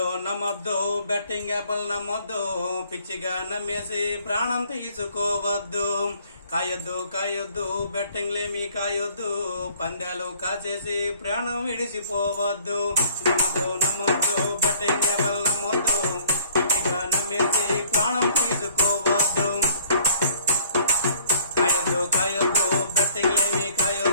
నమ్మొద్దు బెట్టింగ్ యాప్లు నమ్మొద్దు, పిచ్చిగా నమ్మేసి ప్రాణం తీసుకోవద్దు. కాయొద్దు కాయొద్దు బెట్టింగ్లేమీ కాయొద్దు, పందాలు కాచేసి ప్రాణం విడిచిపోవద్దు. నమ్మొద్దు నమ్మొద్దు బెట్టింగ్ యాప్లు నమ్మొద్దు, పిచ్చిగా నమ్మేసి ప్రాణం తీసుకోవద్దు. కాయొద్దు కాయొద్దు బెట్టింగ్లేమీ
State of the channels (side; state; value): both; inverted; correlation -0.57